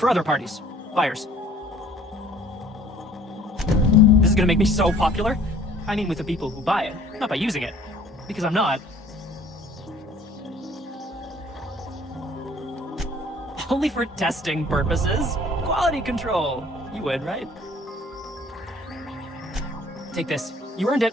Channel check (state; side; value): normal; both; correlation 0.54